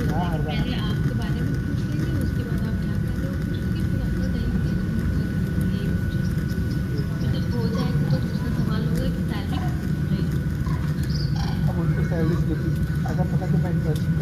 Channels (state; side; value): identical; both; correlation 1.00